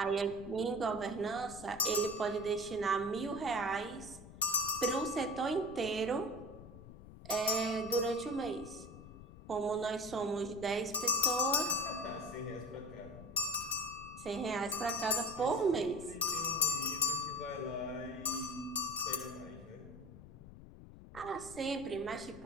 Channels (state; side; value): noise; left; rumble, 16 dB below the sound